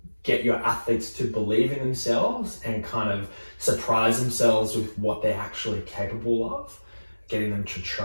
get your athletes to believe in themselves and kind of surprise themselves with what they're actually capable of, getting them to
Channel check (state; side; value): inverted; both; correlation -1.00